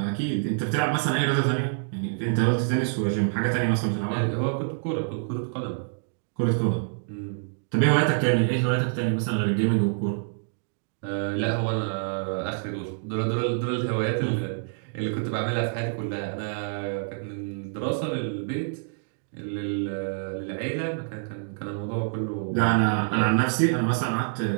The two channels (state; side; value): silent; left; digital silence